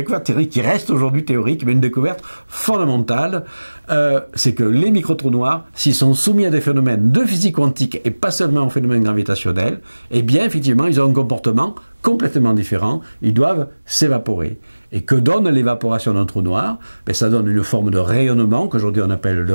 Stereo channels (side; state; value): both; inverted; correlation -1.00